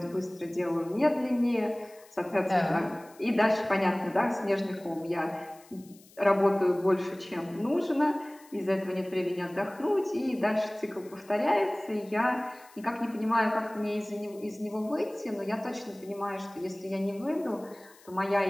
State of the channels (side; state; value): left; noise; hiss, 25 dB below the sound